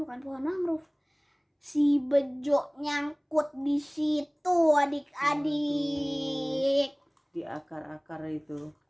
pohon mangrove. Si Bejo nyangkut di situ adik-adik. Di akar-akar itu.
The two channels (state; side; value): identical; both; correlation 1.00